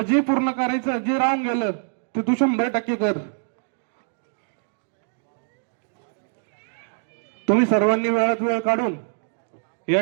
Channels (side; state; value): left; silent; digital silence